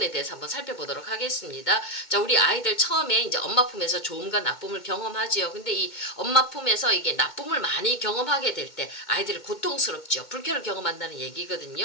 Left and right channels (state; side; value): late; right; 2.2 ms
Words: 대해서 한번 살펴보도록 하겠습니다. 자, 우리 아이들 처음에 이제 엄마 품에서 좋음과 나쁨을 경험하지요. 근데 이 엄마 품에서 이게 나쁨을 많이 경험하게 될 때 아이들이 고통스럽죠. 불쾌를 경험한다는